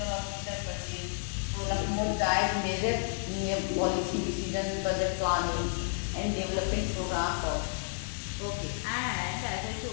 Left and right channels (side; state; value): right; silent; 57 dB below the other